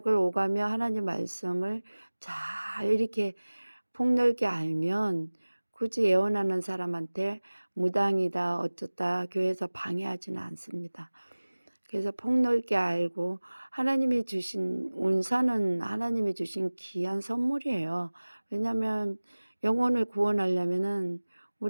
오가며 하나님 말씀을 잘 이렇게 폭넓게 알면 굳이 예언하는 사람한테 무당이다 어쩌다 교회에서 방해하지는 않습니다. 그래서 폭넓게 알고, 하나님이 주신 은사는 하나님이 주신 귀한 선물이에요. 왜냐하면 영혼을 구원하려면은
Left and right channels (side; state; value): both; inverted; correlation -1.00